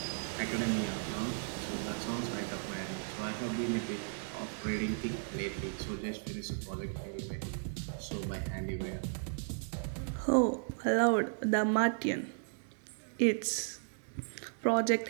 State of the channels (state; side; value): silent; left; digital silence